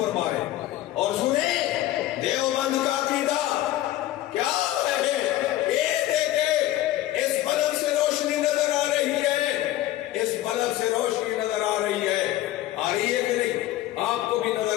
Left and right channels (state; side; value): quieter; right; 14.6 dB